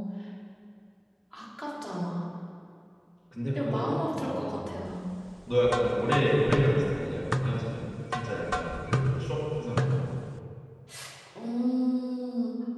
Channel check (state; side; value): identical; both; correlation 1.00